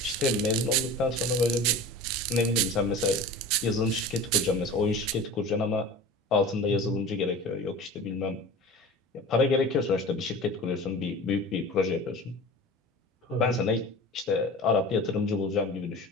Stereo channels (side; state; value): both; normal; correlation 0.36